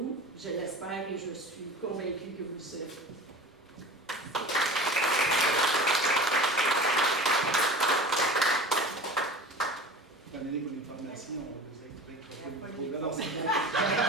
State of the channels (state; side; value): normal; both; correlation 0.36